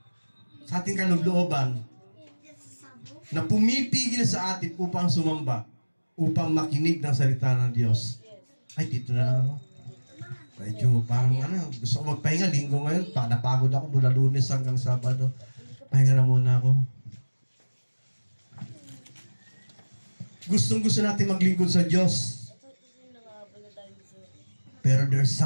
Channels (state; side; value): inverted; both; correlation -1.00